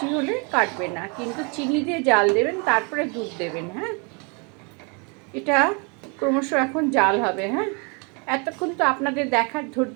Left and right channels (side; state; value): left; quieter; 33.7 dB